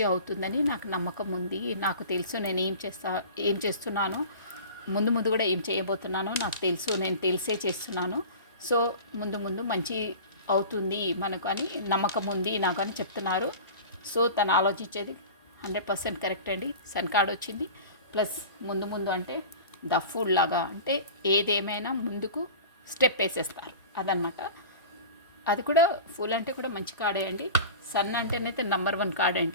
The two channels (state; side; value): inverted; both; correlation -0.37